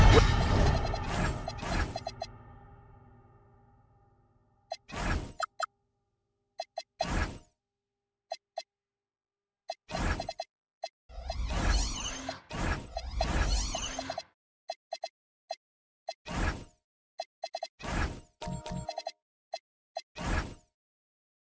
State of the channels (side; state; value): both; identical; correlation 1.00